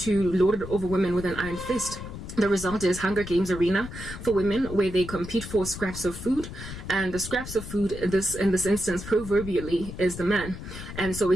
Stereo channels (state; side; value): noise; left; rumble, 10 dB below the sound